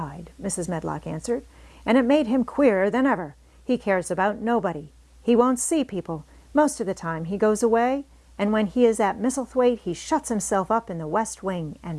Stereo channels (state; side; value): identical; both; correlation 1.00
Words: Mrs. Medlock answered, "and it made him queerer than ever. He cares about nobody. He won't see people. Most of the time he goes away, and when he is at Misselthwaite he shuts himself up in the west wing